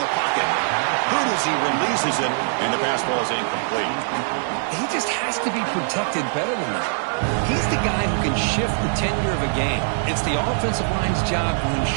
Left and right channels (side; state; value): left; silent; digital silence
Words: the pocket. Good as he releases it, and the pass ball is incomplete. He just has to be protected better than that. He's the guy who can shift the tenure of a game. It's the offensive line's job to